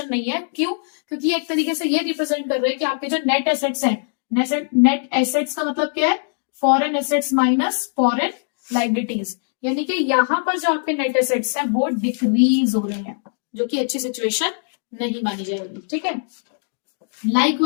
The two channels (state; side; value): silent; right; digital silence